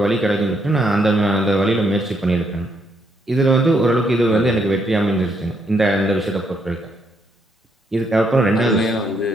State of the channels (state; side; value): normal; both; correlation 0.75